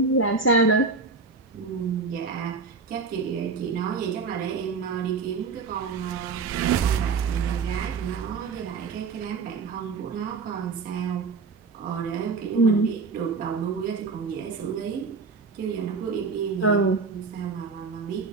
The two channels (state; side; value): quieter; left; 4.6 dB